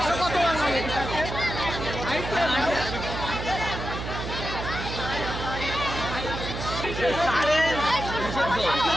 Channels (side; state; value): right; noise; hum, 6 dB below the sound